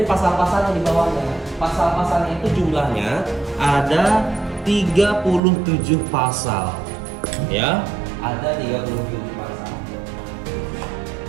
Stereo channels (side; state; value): left; drops out; at 5.4 s